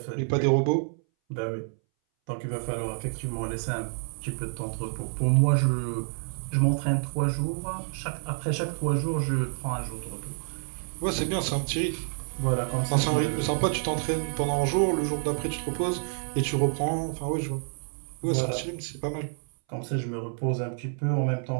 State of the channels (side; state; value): left; silent; 59 dB below the other